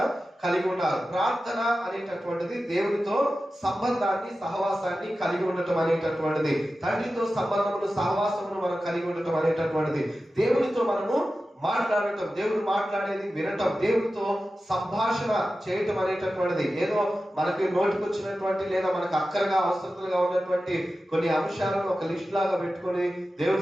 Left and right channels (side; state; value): both; normal; correlation 0.94